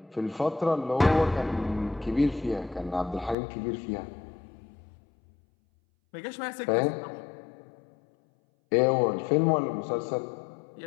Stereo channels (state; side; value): drops out; right; at 3.4 s